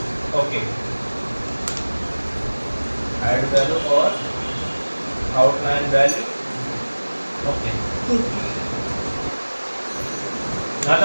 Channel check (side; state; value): both; inverted; correlation -1.00